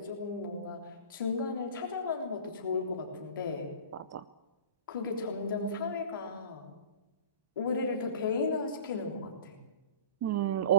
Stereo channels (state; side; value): inverted; both; correlation -0.39